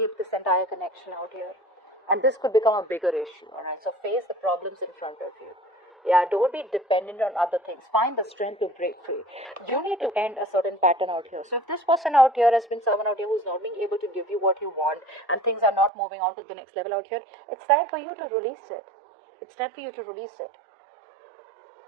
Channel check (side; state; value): left; drops out; at 15.9 s